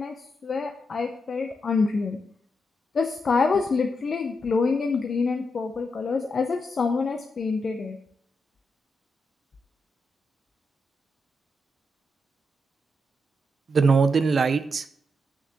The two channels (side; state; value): both; normal; correlation 0.83